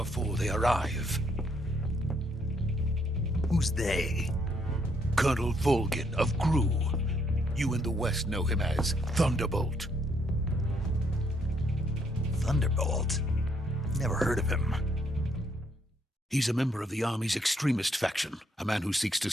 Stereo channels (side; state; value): both; normal; correlation 0.71